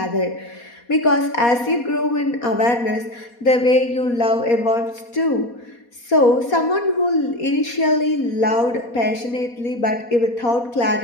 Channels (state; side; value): late; right; 4.2 ms